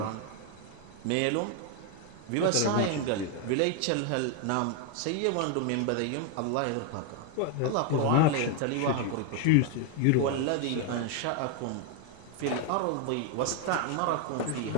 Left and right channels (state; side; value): different; both; correlation 0.01